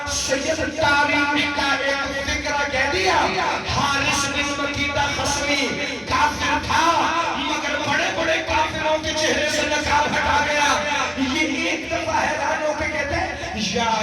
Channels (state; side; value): identical; both; correlation 1.00